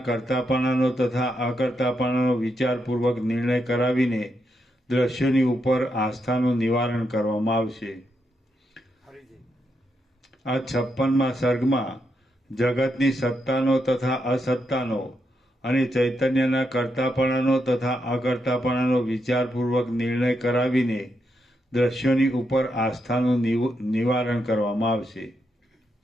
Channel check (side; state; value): both; normal; correlation 0.82